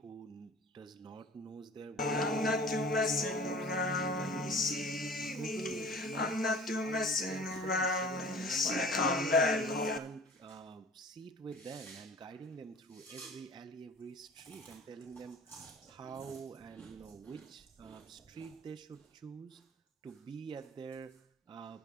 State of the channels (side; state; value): both; normal; correlation 0.44